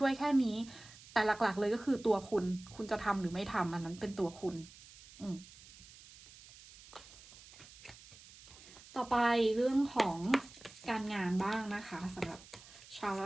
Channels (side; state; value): right; noise; hiss, 20 dB below the sound